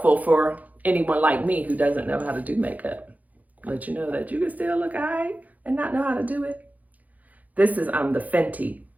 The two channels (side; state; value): left; late; 0.078 ms